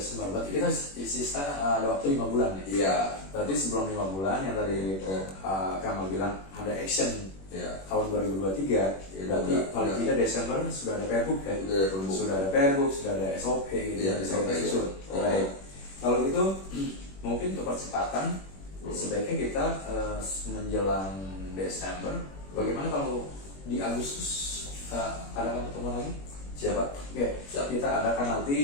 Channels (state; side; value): late; right; 21 ms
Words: Berarti kita sisa ada waktu 5 bulan ya. Iya. Berarti sebelum 5 bulan yang tadi Kamal bilang ada action tahun 2023. Berarti paling tidak Desember sudah ada Pergub ya. Sudah ada Pergub, sudah ada SOP gitu yang bisa kita susun. Baik. Kalau gitu mungkin untuk percepatan sebaiknya kita menjelang Desember. Bagaimana kalau di Agustus ada pertemuan lagi? Siapa? Kita adakan